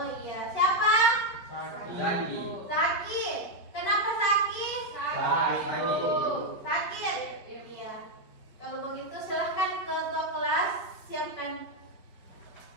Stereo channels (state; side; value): late; right; 5.1 ms